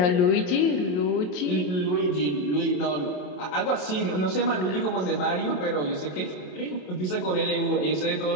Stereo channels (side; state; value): right; late; 27 ms